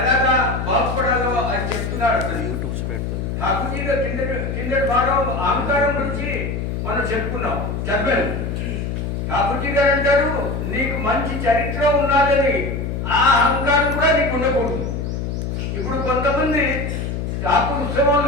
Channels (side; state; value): left; noise; hum, 3 dB below the sound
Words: ఎలాగా బాగుపడాలో అని చెప్తున్నాడు. ఠాకూర్జీగా కిందటి భాగం అహంకారం గురించి మనం చెప్పుకున్నాం చదివాను. ఠాకూర్జీ గారు అంటారు నీకు మంచి చరిత్ర ఉన్నదని ఆ అహంకారం కూడా నీకు ఉండకూడదు. ఇప్పుడు కొంతమంది ఠాకూర్